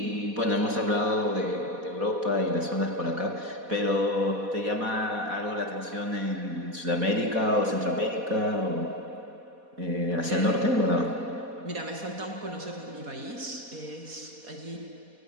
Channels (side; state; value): left; late; 4.1 ms